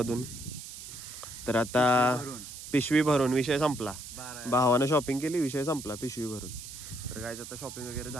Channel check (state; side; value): noise; right; hiss, 12 dB below the sound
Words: तर आता पिशवी भरून विषय संपला. भावानं शॉपिंग केली, विषय संपला पिशवी भरून. तर काय आता शॉपिंग वगैरे